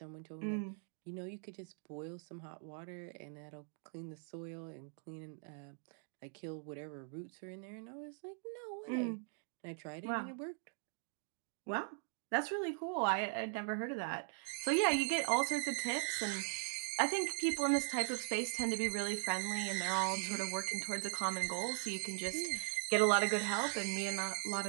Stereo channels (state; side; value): silent; left; 51 dB below the other